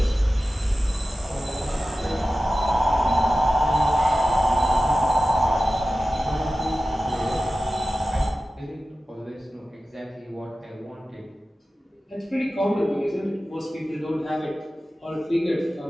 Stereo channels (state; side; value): normal; both; correlation 0.94